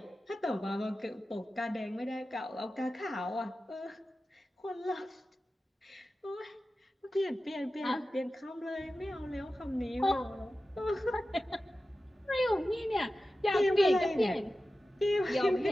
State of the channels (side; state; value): both; normal; correlation 0.94